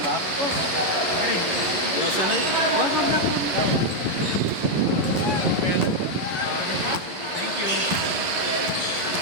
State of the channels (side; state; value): left; late; 11 ms